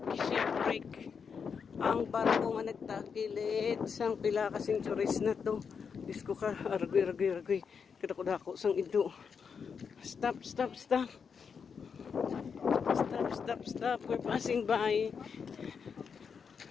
Shokrake. Ang barko nga nagtakilit sang pila ka centuries na to. Disko ka, argoy. Kadako-dako sang ido. Stop. We're passing by.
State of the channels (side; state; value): right; quieter; 6.2 dB